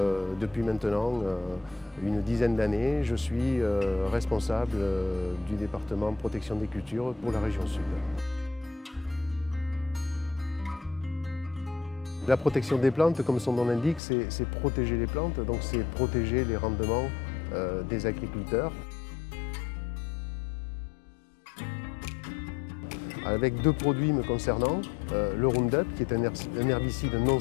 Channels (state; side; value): drops out; right; at 14.0 s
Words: depuis maintenant une dizaine d'années, je suis responsable du département protection des cultures pour la région sud. La protection des plantes, comme son nom l'indique, c'est protéger les plantes, donc c'est protéger les rendements des agriculteurs. Avec deux produits me concernant, le Roundup qui est un herbicide non